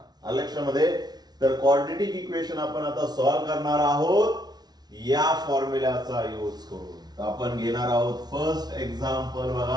लक्षामध्ये, तर क्वाड्रेटिक इक्वेशन आपण आता सॉल्व्ह करणार आहोत या फॉर्म्युल्याचा यूज करून. तर आपण घेणार आहोत फर्स्ट एक्झाम्पल.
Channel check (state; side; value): late; left; 0.19 ms